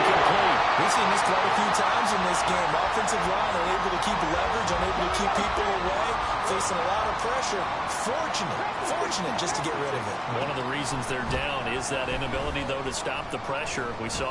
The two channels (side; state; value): both; identical; correlation 1.00